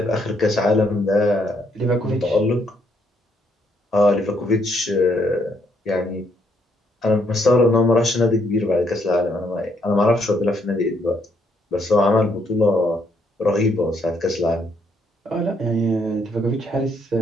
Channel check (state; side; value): normal; both; correlation 0.72